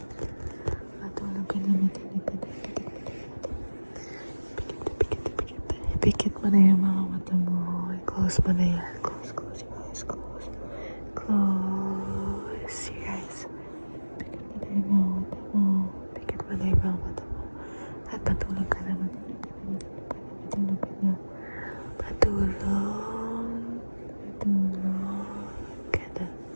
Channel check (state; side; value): inverted; both; correlation -1.00